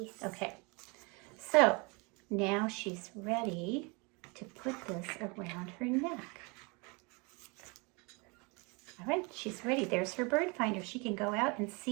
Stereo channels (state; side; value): quieter; left; 29.7 dB